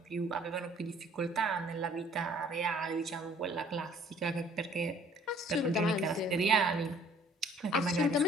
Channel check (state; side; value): normal; both; correlation 0.56